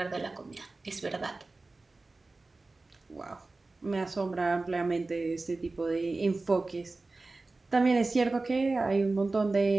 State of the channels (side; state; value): left; quieter; 3.4 dB